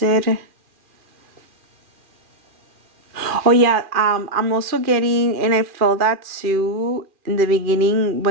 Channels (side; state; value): left; late; 2.4 ms